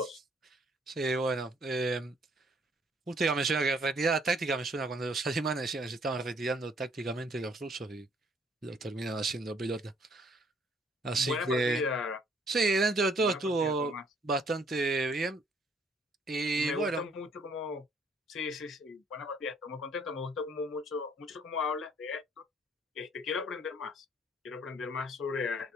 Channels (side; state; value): both; normal; correlation 0.64